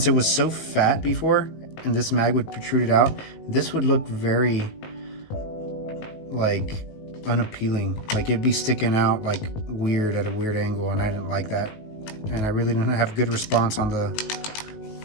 it was so fat before, and this mag would protrude out, this would look very, like, unappealing. Like, it'd be sticking out, like, weird at a weird angle, and I didn't like that. And I really didn't have good response on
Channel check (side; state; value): right; late; 19 ms